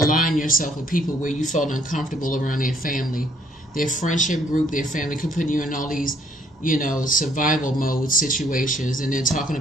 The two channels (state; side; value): normal; both; correlation 0.65